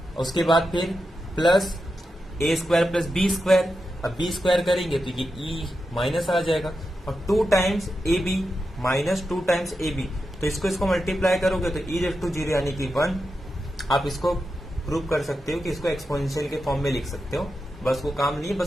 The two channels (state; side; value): normal; both; correlation 0.89